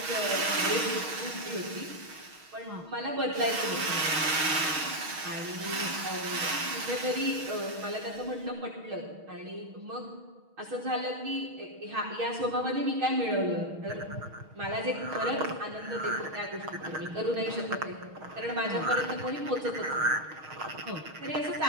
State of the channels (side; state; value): left; late; 6.4 ms